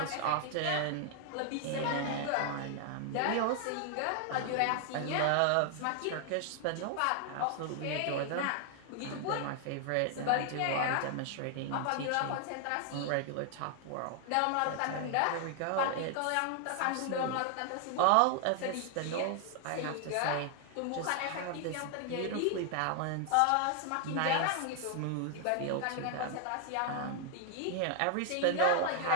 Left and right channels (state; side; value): different; both; correlation 0.00